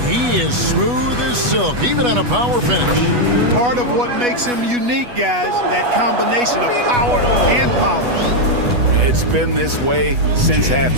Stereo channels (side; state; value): left; late; 8.2 ms